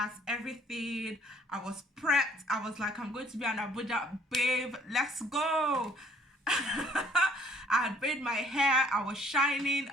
everything. I was prepped. I was like, I'm going to be an Abuja babe, let's go. I had braided my hair, I was shining,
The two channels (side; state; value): both; normal; correlation 0.60